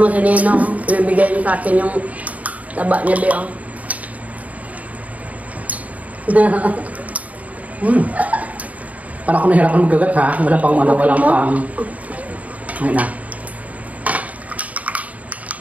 si Nino, ibibigay niyo sa akin yung taba niya ba Para ako nahirapan magagat ha. Wala pang walang pang. Ngayon na.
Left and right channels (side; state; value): left; late; 0.071 ms